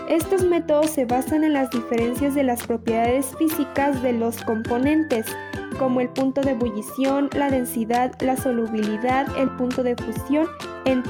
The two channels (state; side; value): identical; both; correlation 1.00